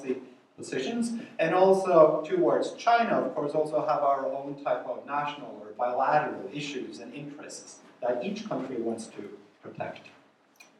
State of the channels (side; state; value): both; identical; correlation 1.00